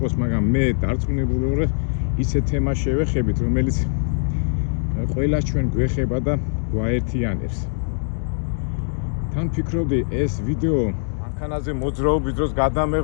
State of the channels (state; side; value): silent; right; digital silence